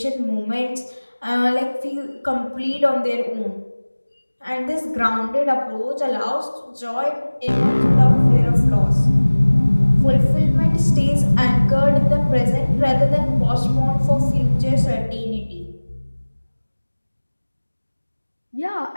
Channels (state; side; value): inverted; both; correlation -1.00